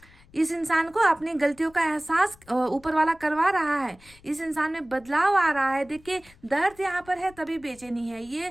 इस इंसान को अपनी गलतियों का एहसास ऊपर वाला करवा रहा है। इस इंसान में बदलाव आ रहा है। देखिए दर्द यहाँ पर है तभी बेचैनी है।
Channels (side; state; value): left; noise; rumble, 26 dB below the sound